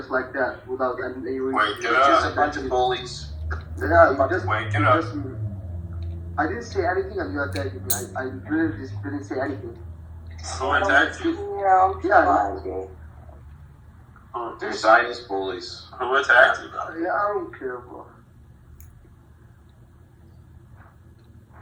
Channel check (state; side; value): identical; both; correlation 1.00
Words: like that without any reason. Wake it It's up. just a bunch of bullies. Yeah, you just, Wake it up. I didn't say anything and you attacked me. I really just didn't say anything. Who attacked you? Yeah, Yeah. fine, dude. They're Zionist bullies. Who attacked you? Yeah, I don't care, bro.